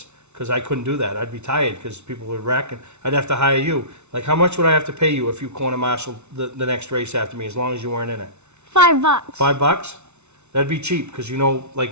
because I couldn't do that. I'd be tired because people would wreck, and I'd have to hire you. Like, how much would I have to pay you if you corner marshal the next race after me, as long as you weren't in it? $5. $5? That'd be cheap, because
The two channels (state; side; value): late; left; 0.82 ms